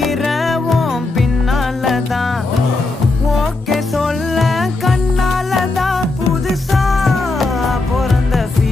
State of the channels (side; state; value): right; quieter; 3.2 dB